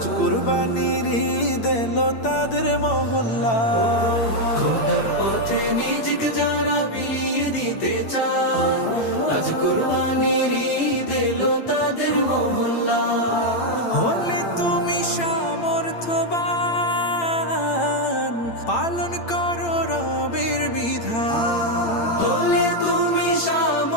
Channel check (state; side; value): late; right; 8.8 ms